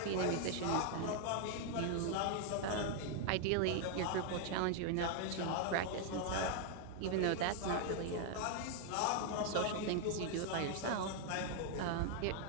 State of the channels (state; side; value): different; both; correlation 0.00